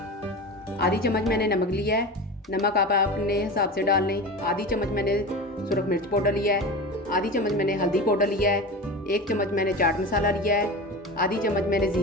आधी चम्मच मैंने नमक लिया है। नमक आप अपने हिसाब से डाल लें। आधी चम्मच मैंने सुरख मिर्च पाउडर लिया है, आधी चम्मच मैंने हल्दी पाउडर लिया है, 1 चम्मच मैंने चाट मसाला लिया है, आधी चम्मच मैंने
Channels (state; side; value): normal; both; correlation 0.29